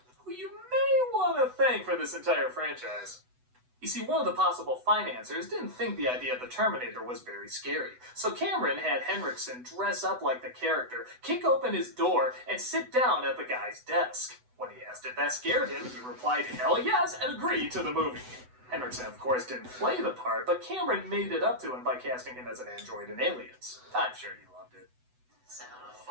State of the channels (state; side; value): late; left; 8.0 ms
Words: who you may want to thank for this entire franchise. You see, one of the possible financiers didn't think the idea of the Terminator was very scary, so Cameron had Henriksen dress up like the character, kick open his door, and sit down at the guy's desk. When he asked if that scared him, he replied, "Hell yes," and agreed to the movie. Henriksen, of course, didn't play the part, but Cameron made it up to him by casting him as an android in Aliens. I'm sure he loved it. So.